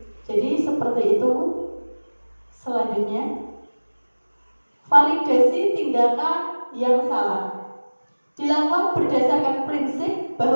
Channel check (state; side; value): inverted; both; correlation -1.00